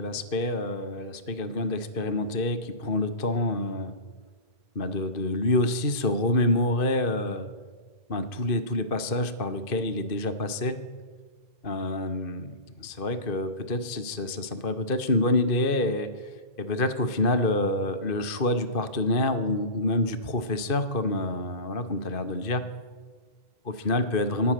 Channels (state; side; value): late; right; 2.5 ms